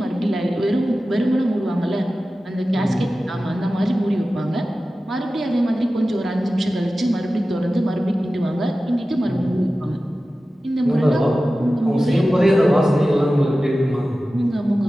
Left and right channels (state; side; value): normal; both; correlation 0.95